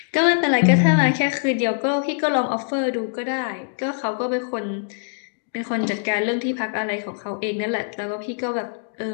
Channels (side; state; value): right; silent; digital silence